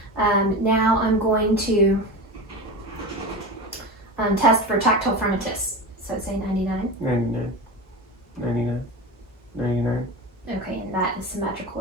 Now I'm going to test for tactile fronitus. So say 99. 99, 99, 99. Okay, and that is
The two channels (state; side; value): normal; both; correlation 0.26